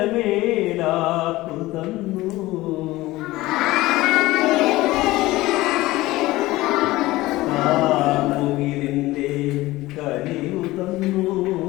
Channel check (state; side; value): quieter; right; 18.4 dB